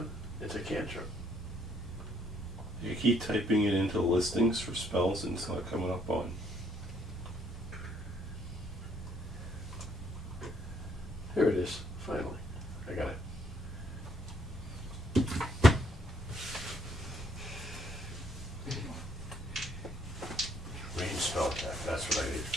It's a cantrip. You keep typing it into listings for spells and it's not coming up on. Here it is. Finally. I got it. Range spell attack. That's what I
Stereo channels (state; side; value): normal; both; correlation 0.68